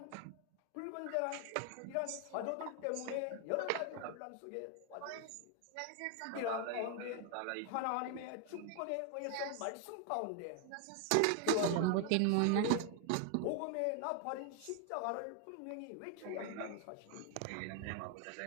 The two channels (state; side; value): different; both; correlation 0.01